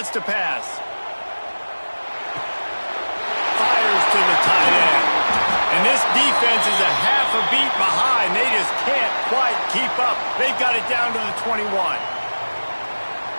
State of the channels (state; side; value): inverted; both; correlation -1.00